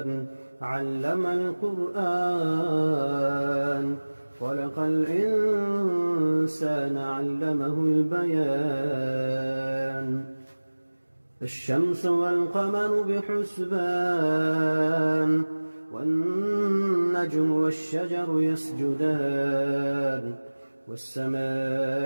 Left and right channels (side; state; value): both; inverted; correlation -1.00